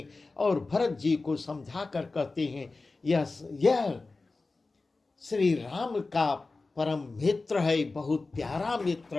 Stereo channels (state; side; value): quieter; right; 3.6 dB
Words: और भरत जी को समझाकर कहते हैं, यह श्री राम का परम मित्र है, बहुत प्यारा मित्र